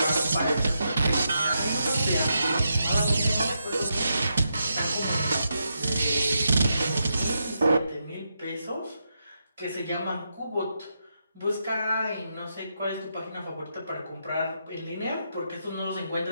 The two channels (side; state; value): both; inverted; correlation -0.83